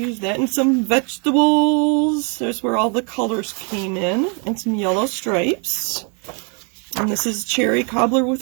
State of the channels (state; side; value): quieter; left; 36.8 dB